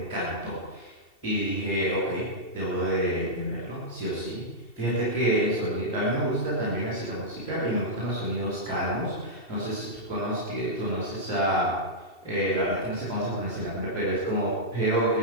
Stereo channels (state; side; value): late; right; 2.7 ms